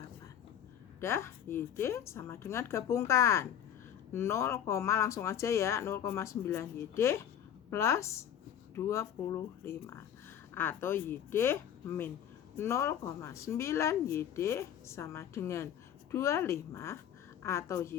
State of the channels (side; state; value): right; quieter; 9.8 dB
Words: Dah, YD sama dengan gabungkan. 0, langsung aja ya. 0,9 YD plus 25 atau YD min 0,9 YD sama dengan 25 atau